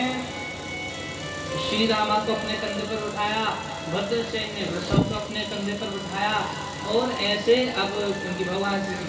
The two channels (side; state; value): both; identical; correlation 1.00